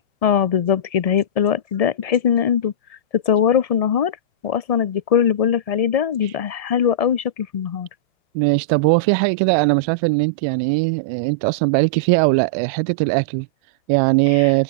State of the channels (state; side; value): late; right; 1.7 ms